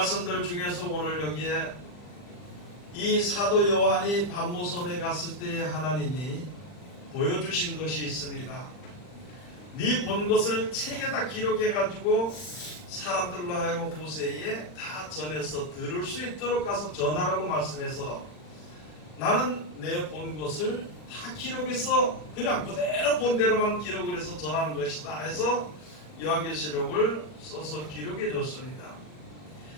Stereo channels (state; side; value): late; right; 40 ms